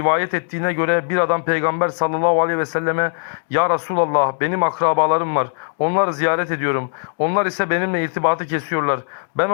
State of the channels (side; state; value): right; silent; digital silence